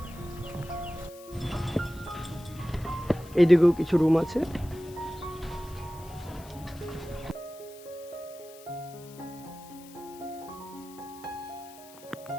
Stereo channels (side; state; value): left; noise; hiss, 20 dB below the sound